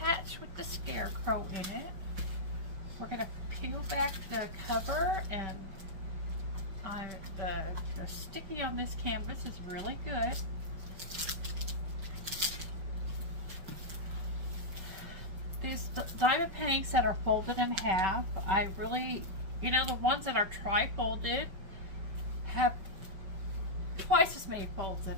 with the scarecrow in it. We're going to peel back the cover, and the sticky on this canvas is really good. These diamond paintings that are folded in half, I really, the ones that are tri-folded have twice as many folds in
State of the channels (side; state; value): left; late; 5.2 ms